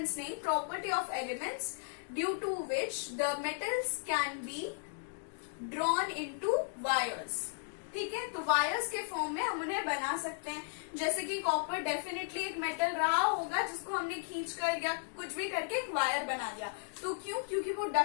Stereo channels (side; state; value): right; silent; digital silence